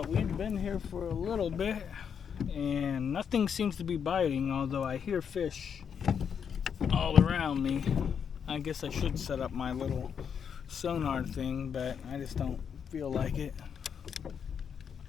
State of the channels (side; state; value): right; quieter; 7.3 dB